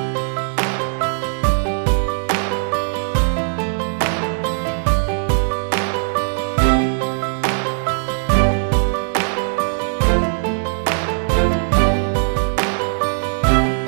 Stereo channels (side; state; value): left; silent; 66 dB below the other